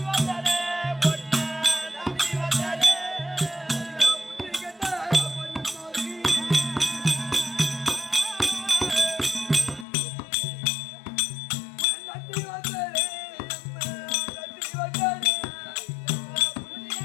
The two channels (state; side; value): drops out; right; at 9.9 s